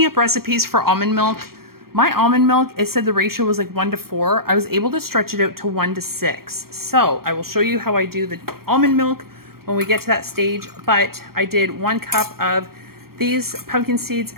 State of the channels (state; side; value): late; left; 0.94 ms